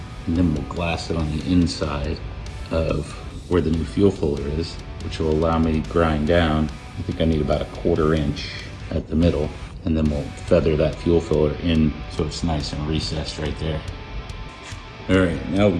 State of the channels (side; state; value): both; identical; correlation 1.00